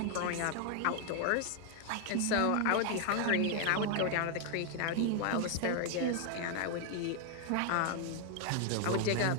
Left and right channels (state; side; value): different; both; correlation 0.00